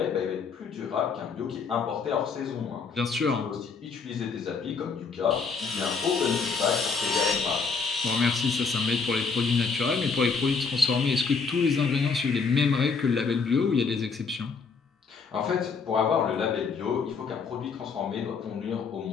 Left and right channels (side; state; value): right; quieter; 5.1 dB